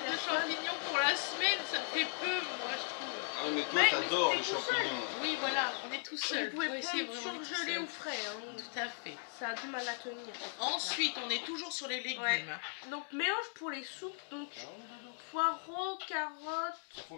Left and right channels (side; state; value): right; silent; 53 dB below the other